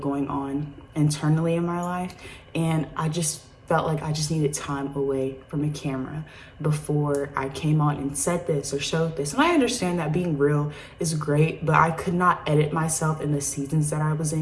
on internally in my life, and I just felt like I just needed time away from a camera before I came on and said this or showed this. And I understand that being real is great, but I could not edit myself in the seasons that I was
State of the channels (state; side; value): identical; both; correlation 1.00